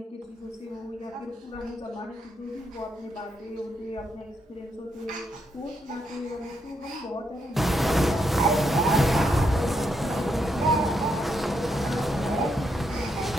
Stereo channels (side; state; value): both; normal; correlation 0.79